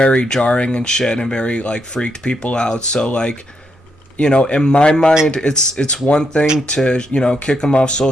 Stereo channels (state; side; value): normal; both; correlation 0.80